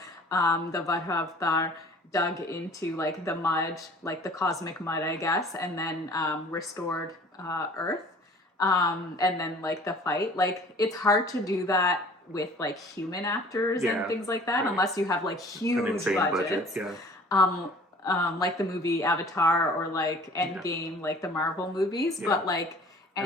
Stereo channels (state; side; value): normal; both; correlation 0.49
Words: the Varaha Avatar dug into like the mud, like the cosmic mud, I guess, and then restored Earth. And then like the fight, like it's hard to do that with like human actors and Yeah, things like that, right. unless you have like An huge insane budgets. budget. Yeah. Like the movie Avatar or like Endgame, like the Marvel movies, Yeah. but like I